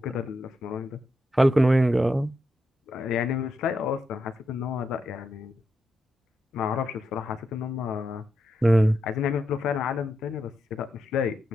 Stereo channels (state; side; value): normal; both; correlation 0.85